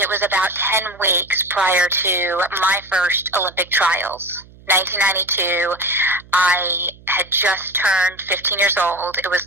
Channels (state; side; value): noise; right; hum, 24 dB below the sound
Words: was about 10 weeks prior to my first Olympic trials. 1992, I had just turned 15 years old. It was